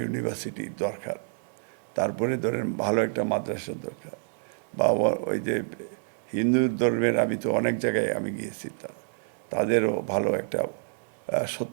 ইউনিভার্সিটি দরকার। তারপরে ধরেন ভালো একটা মাদ্রাসার দরকার। বা ওই যে হিন্দু ধর্মের, আমি তো অনেক জায়গায় আমি গিয়েছি, তাদেরও ভালো একটা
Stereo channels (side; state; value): left; silent; digital silence